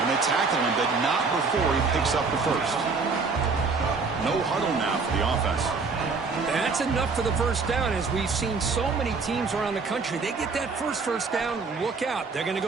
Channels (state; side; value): quieter; left; 4.6 dB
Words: they tackle him, but not before he picks up the first. No huddle now for the offense. That's enough for the first down. As we've seen so many teams around the country, they get that first down, look out. They're going to